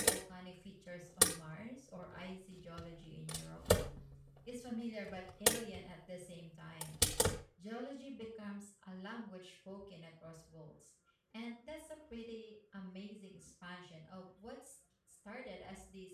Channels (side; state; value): both; identical; correlation 1.00